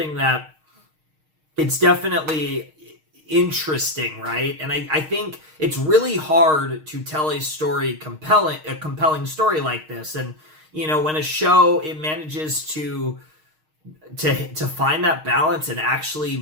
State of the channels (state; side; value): late; left; 6.5 ms